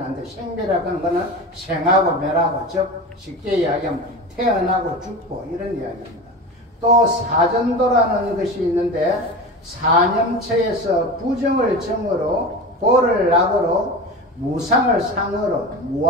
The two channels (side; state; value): both; normal; correlation 0.29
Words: 안 돼. 생멸이라고 하는 것은 생하고 멸하고 즉 쉽게 이야기하면 태어나고 죽고 이런 이야기입니다. 또 사전도라는 것이 있는데 사념처에서 부정을 정으로 보를 낙으로 무상을 상으로